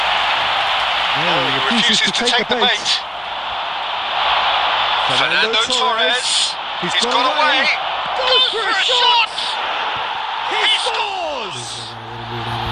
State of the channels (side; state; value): both; identical; correlation 1.00